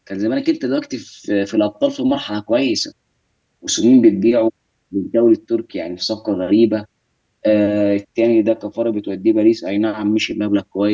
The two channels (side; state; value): both; identical; correlation 1.00